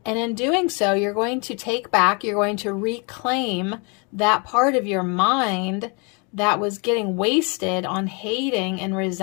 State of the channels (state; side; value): quieter; right; 33.3 dB